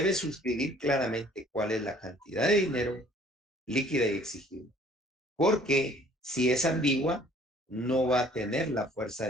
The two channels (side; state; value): both; normal; correlation 0.56